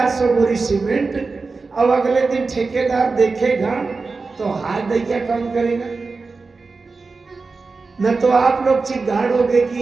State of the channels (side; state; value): left; quieter; 4.1 dB